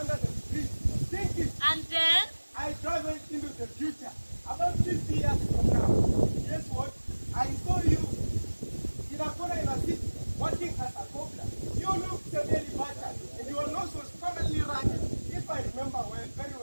the tree, thinking. And then? I traveled into the future. About 50 years from now, guess what? I saw you in a corner in a city, working as a cobbler. You looked severely battered, and your nose was permanently running, if I remember well, very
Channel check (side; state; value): both; inverted; correlation -1.00